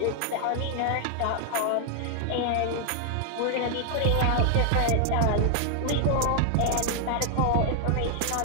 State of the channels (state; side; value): different; both; correlation 0.00